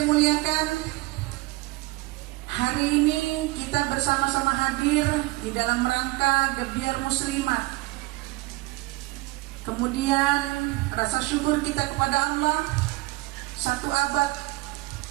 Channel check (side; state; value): left; quieter; 21.9 dB